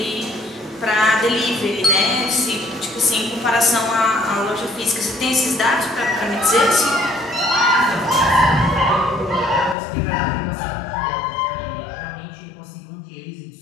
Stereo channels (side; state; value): right; drops out; at 9.8 s